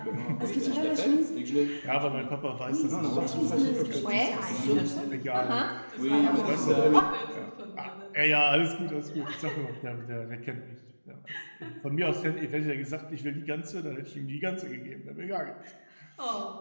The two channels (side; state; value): both; inverted; correlation -1.00